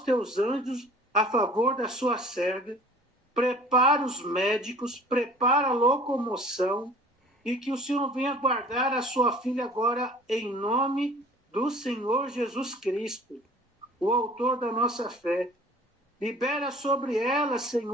teus anjos a favor da sua serva, prepara os médicos, prepara a locomoção, e que o Senhor venha guardar a sua filha agora em nome do Senhor Jesus Cristo, o autor da nossa fé. Libera sobre ela,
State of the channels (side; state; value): both; normal; correlation 0.48